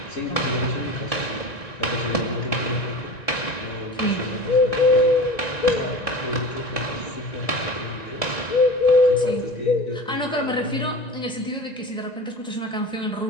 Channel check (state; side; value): late; right; 1.9 ms